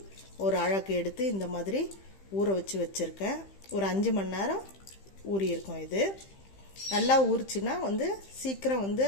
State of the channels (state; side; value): late; right; 15 ms